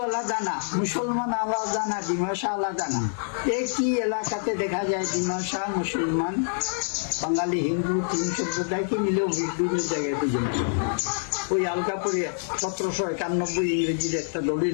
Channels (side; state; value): right; silent; 61 dB below the other